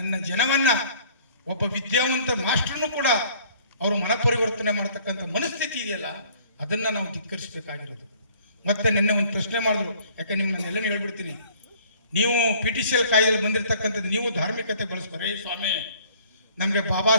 ಜನವನ್ನ, ಒಬ್ಬ ವಿದ್ಯಾವಂತ ಮಾಸ್ಟರ್ನು ಕೂಡ ಅವರು ಮನಪರಿವರ್ತನೆ ಮಾಡ್ತಕ್ಕಂಥ ಮನಸ್ಥಿತಿ ಇದೆಯಲ್ಲ, ಅದನ್ನ ನಾವು ಧಿಕ್ಕರಿಸಬೇಕಾಗಿರೋದು. ಮತ್ತೆ ನಿನ್ನೆ ಒಂದು ಪ್ರಶ್ನೆ ಮಾಡಿದ್ರು, ಯಾಕೆ ನಿಮ್ಮನ್ನೆಲ್ಲ ಹೇಳ್ಬಿಡ್ತೀನಿ. ನೀವು PTCL ಕಾಯ್ದೆಯಲ್ಲಿ ಬಂದಿರತಕ್ಕಂಥದ್ದು ನೀವು ಧಾರ್ಮಿಕತೆ ಬಳಸ್ತಾರೆ. ಸ್ವಾಮಿ, ನಮಗೆ ಬಾಬಾ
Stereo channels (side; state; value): both; inverted; correlation -0.56